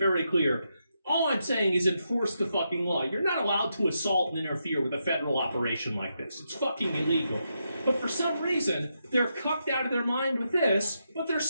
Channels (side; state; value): both; inverted; correlation -0.83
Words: clear. All I'm saying is enforce the fucking law. You're not allowed to assault and interfere with a federal operation like this. It's fucking illegal. But for some reason, they're cucked out of their mind with this, but they're